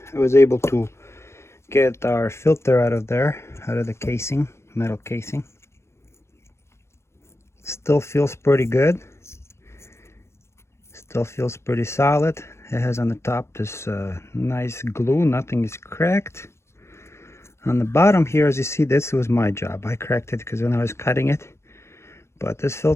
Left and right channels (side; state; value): right; late; 0.13 ms